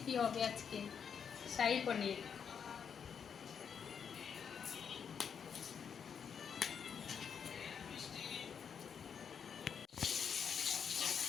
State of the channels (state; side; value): quieter; right; 7.2 dB